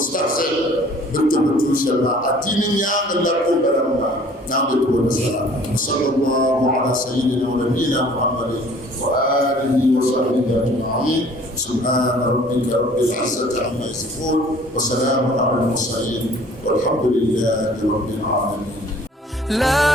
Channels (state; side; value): normal; both; correlation 0.53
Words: بالتبتل شما أتيني يا لكم برما نعبد ونسأل صلى الله على سيدنا ونبينا محمد وآله وصحبه أجمعين سبحان ربك رب العزة عما يصفون وسلام على المرسلين والحمد لله رب العالمين.